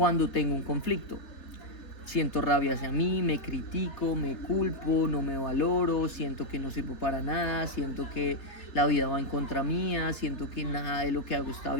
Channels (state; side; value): late; right; 3.3 ms